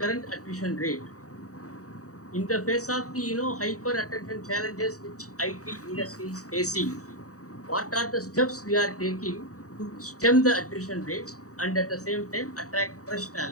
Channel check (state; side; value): late; right; 0.66 ms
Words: current attrition rate? In the face of the hyper attention challenges which IT industry is facing, what are the steps we are taking to stem the attrition rates and at the same time attract fresh